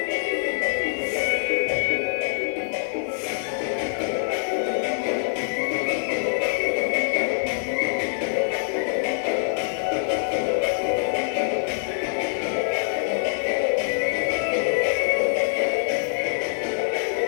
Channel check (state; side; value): silent; right; 59 dB below the other